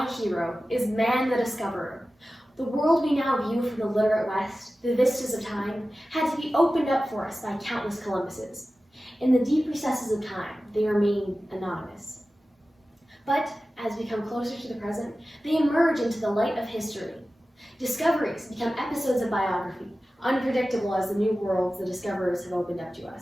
hero is man the discoverer. The world we now view from the literate West, the vistas of time, had to be opened up for us by countless Columbuses. In the deep recesses of time, they remain anonymous. But as we come closer to the present, they emerge into the light of history. Discoveries become episodes of biography, unpredictable as the new worlds the discoverers have opened up to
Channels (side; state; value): both; normal; correlation 0.95